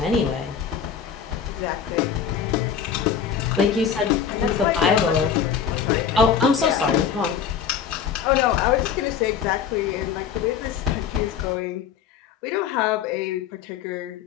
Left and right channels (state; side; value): quieter; right; 7.6 dB